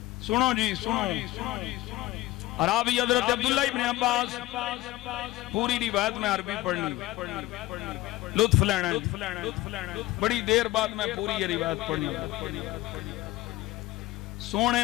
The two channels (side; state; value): right; quieter; 17.7 dB